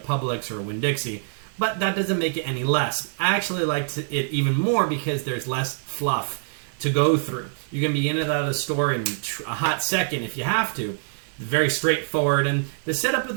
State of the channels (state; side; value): silent; left; digital silence